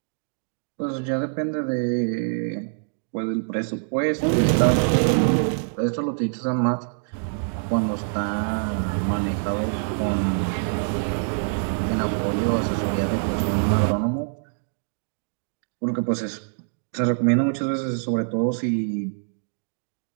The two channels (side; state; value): left; silent; digital silence